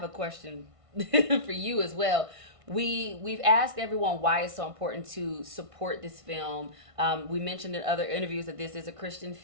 a question for you as well. We've asked everyone why it's so important to support this film. We mentioned in other interviews that this is a Christian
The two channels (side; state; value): left; late; 1.5 ms